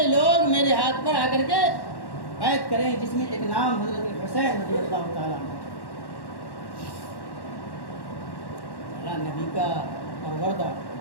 لوگ میرے ہاتھ پر آ کر کے بیعت کریں، جس میں ایک نام حضرت حسین رضی اللہ تعالیٰ عنہ، نبی کا پروردہ،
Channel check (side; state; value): right; late; 1.1 ms